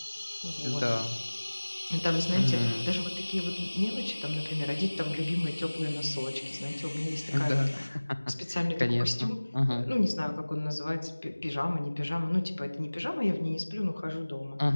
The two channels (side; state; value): both; inverted; correlation -1.00